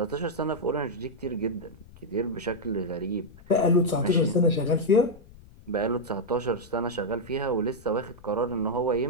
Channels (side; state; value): left; noise; rumble, 22 dB below the sound